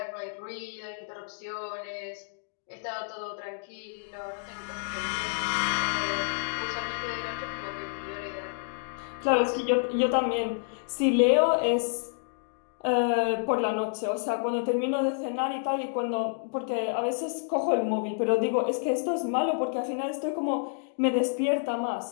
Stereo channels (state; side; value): silent; right; digital silence